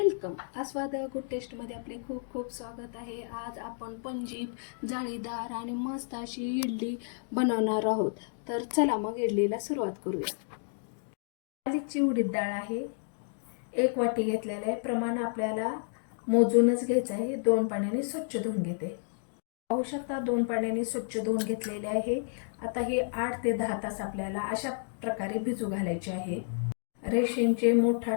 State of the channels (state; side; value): silent; right; digital silence